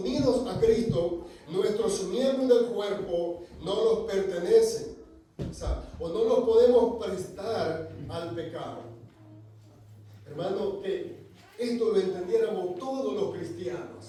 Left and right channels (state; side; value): identical; both; correlation 1.00